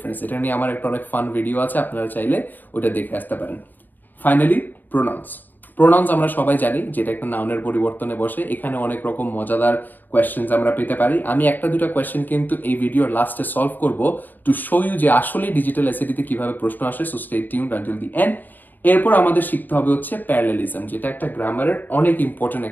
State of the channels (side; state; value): right; late; 0.088 ms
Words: এটা নিয়ে আমার একটা অনেক ফান ভিডিও আছে, আপনারা চাইলে ওটা দেখে আসতে পারেন। Finally pronounce. প্রোনাউন্স আমরা সবাই জানি যেটা একটা নাউনের পরিবর্তনে বসে। এখানে অনেক রকম মজাদার কোয়েশ্চেন্স আমরা পেতে পারি। আমি একটা দুটা কোয়েশ্চেন কিন্তু এই ভিডিওর লাস্টে সলভ করব টু শো ইউ যে আসলে ডিজিটাল এসএটিতে কিভাবে প্রশ্ন আসে। So stay tuned until the end. এরপর আমাদের শিখতে হবে হচ্ছে প্যারালেলিজম, যেটা একটা গ্রামারের অনেক ইম্পর্টেন্ট